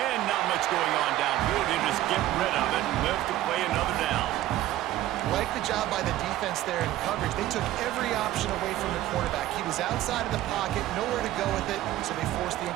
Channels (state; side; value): quieter; left; 14.4 dB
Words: not much going on downfield. They just get rid of it and live to play another down. Like the job by the defense there in coverage. They took every option away from the quarterback. He was outside of the pocket, nowhere to go with it, so they forced the